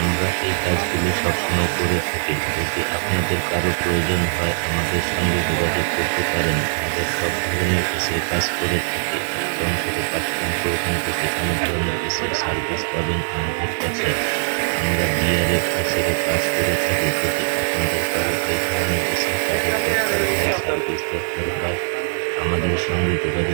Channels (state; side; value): silent; left; digital silence